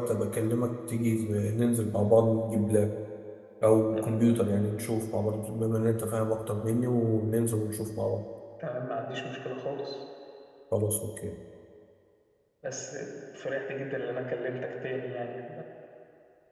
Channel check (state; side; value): identical; both; correlation 1.00